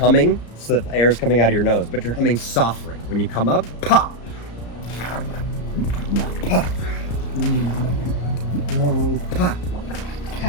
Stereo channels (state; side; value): late; right; 34 ms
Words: so that the air is coming out of your nose, but you're humming softly. When you come up, pop. Pop. Pop.